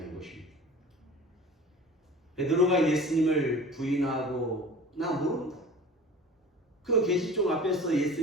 것입니다. 베드로가 예수님을 부인하고 나 모른다. 그 계시종 앞에서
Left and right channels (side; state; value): both; normal; correlation 0.41